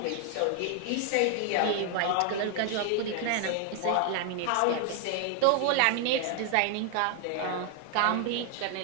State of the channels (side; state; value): both; different; correlation 0.00